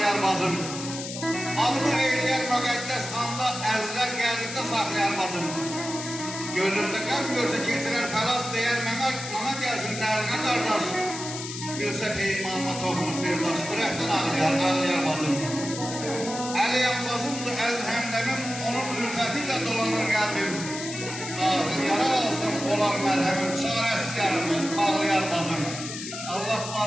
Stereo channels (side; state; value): left; noise; hiss, 8 dB below the sound